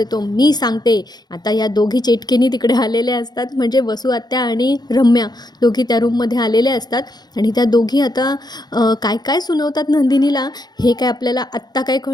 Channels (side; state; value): right; late; 0.20 ms